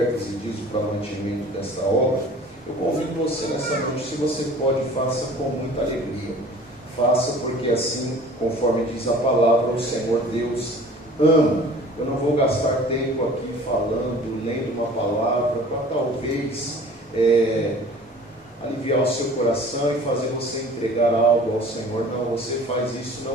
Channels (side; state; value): both; normal; correlation 0.46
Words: e dízimo para o mantimento desta obra. Eu convido você nessa noite, se você pode, faça com muita alegria. Faça porque assim, conforme diz a palavra, o Senhor Deus ama. Eu não vou gastar tempo aqui falando, lendo uma palavra, para talvez aliviar o seu coração e fazer você entregar algo ao Senhor. Não, você faz isso